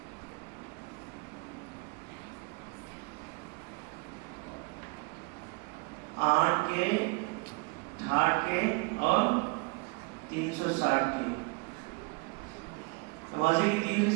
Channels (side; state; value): left; quieter; 30.5 dB